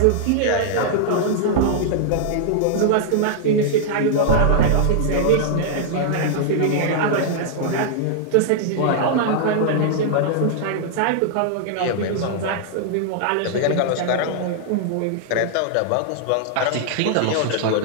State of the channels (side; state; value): both; different; correlation -0.01